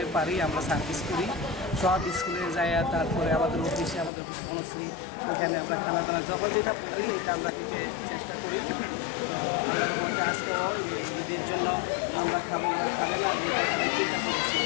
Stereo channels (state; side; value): drops out; right; at 4.1 s